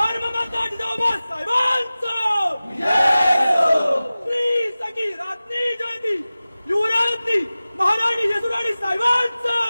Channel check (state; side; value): inverted; both; correlation -0.97